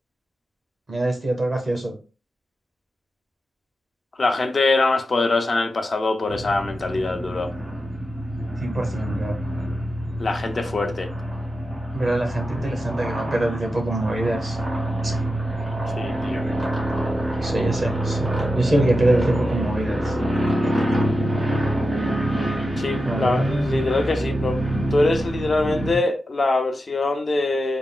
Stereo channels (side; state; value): both; normal; correlation 0.90